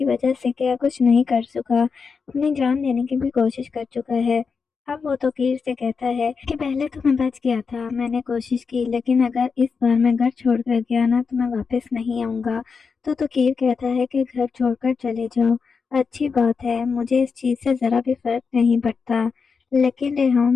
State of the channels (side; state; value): right; quieter; 5.3 dB